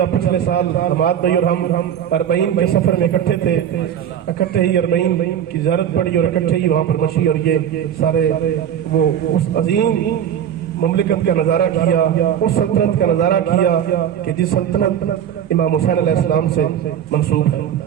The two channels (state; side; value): quieter; left; 9.5 dB